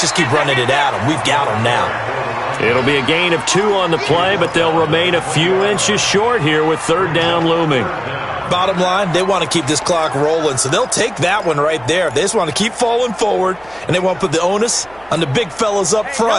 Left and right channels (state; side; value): noise; right; hum, 26 dB below the sound